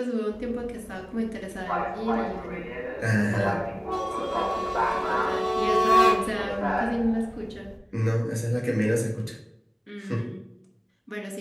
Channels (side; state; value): both; identical; correlation 1.00